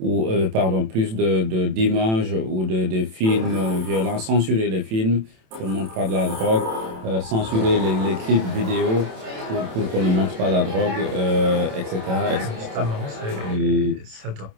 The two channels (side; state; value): left; late; 27 ms